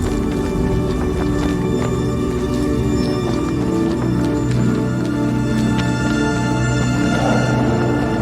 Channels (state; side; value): identical; both; correlation 1.00